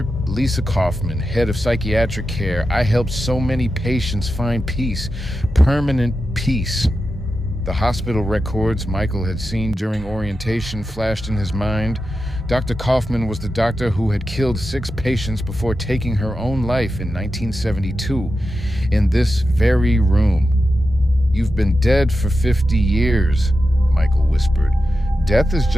Lisa Kaufman, head of psychiatric care. I helped so many patients find peace, permanent peace." The hospital records Michael had seen during orientation flashed in his mind. Dr. Kaufman was the doctor who had killed 6 patients before taking her own life in 1972, in this very room. "You've been dead for 50 years, Michael whispered. "Death is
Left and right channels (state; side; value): normal; both; correlation 0.90